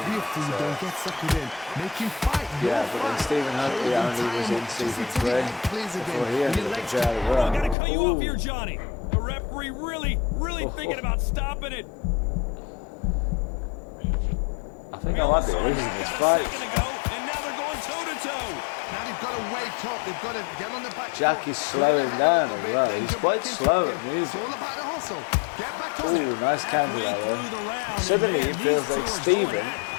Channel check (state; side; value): drops out; right; at 7.8 s